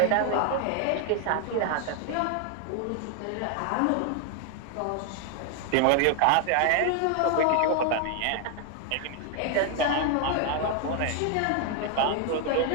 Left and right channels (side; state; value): both; different; correlation 0.00